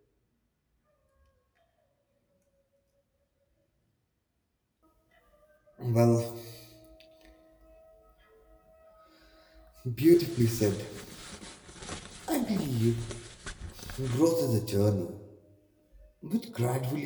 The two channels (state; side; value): identical; both; correlation 1.00